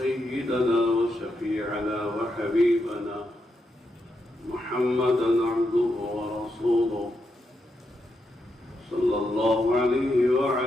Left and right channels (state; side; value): normal; both; correlation 0.83